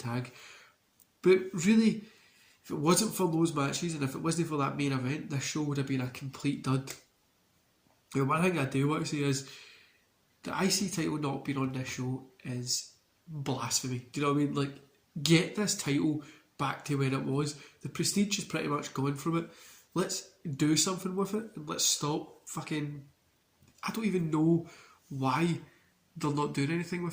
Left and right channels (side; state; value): both; identical; correlation 1.00